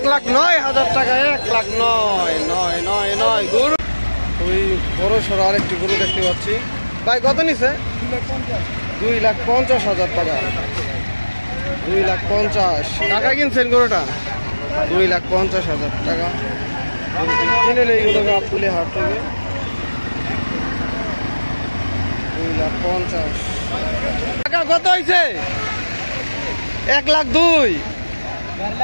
টাকা। 1,09,999 গরু। ওই বড় সড়ো আরেকটি গরু দেখতে পাচ্ছি ভাই। কত নিছে? 2,50,000 টাকা। 2,50,000 টাকা কিনছেন গরুটা? 2,50,000 টাকা কিনে নেই গরু গাবতলী হাট থেকে। 2,50,000 টাকা। কত হয়েছে? 1,02,000।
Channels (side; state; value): both; inverted; correlation -1.00